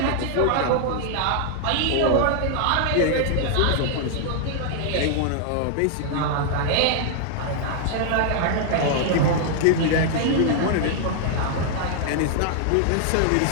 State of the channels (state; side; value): different; both; correlation 0.00